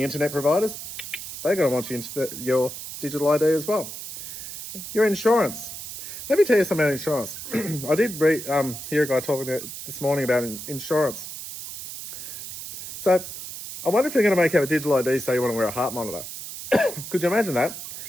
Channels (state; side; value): noise; right; hiss, 10 dB below the sound